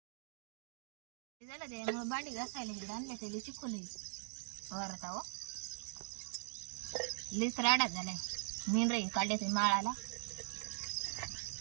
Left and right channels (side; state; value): left; silent; digital silence